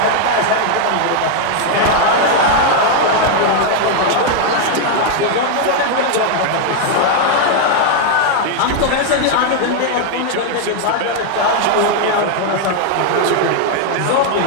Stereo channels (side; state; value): both; different; correlation 0.00